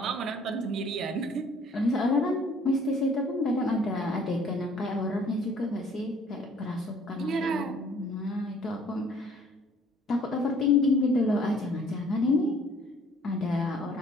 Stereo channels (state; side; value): normal; both; correlation 0.57